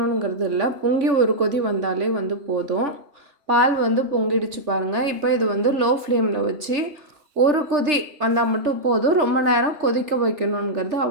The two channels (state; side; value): late; left; 3.3 ms